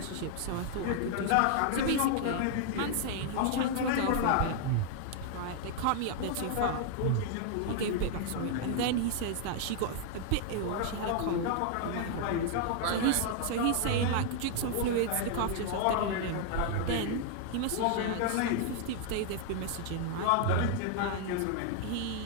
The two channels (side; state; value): both; different; correlation 0.00